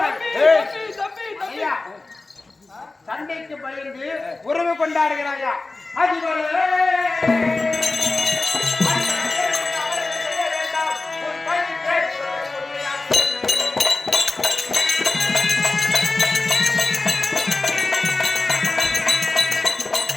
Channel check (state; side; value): quieter; right; 3.4 dB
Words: சண்டைக்கு பயந்து உறவு கொண்டாடுகிறாயா?